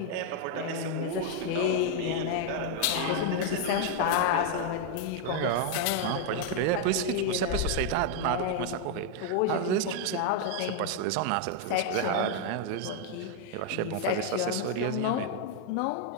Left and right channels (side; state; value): both; different; correlation 0.00